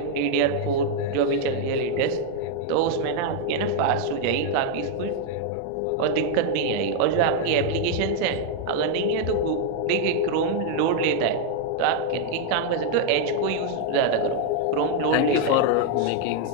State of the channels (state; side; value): different; both; correlation 0.00